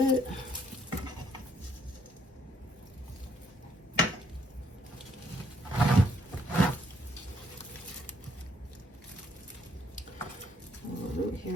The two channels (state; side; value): normal; both; correlation 0.69